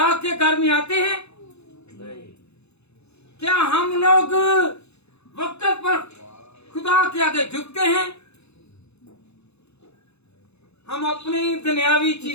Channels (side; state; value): right; late; 0.80 ms